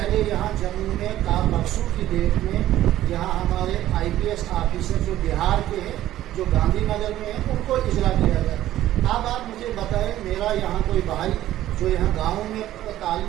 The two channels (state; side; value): quieter; left; 13.6 dB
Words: यहाँ जम्मू में बरसों की डेट में यहाँ हमारे IPS ऑफिसर जो बिहार के हैं, जो गांधीनगर में हैं, उनको इजरा किया जाए। अब आप मुझे बताएं, मेरा यहाँ कोई भाई जो यहाँ गाँव में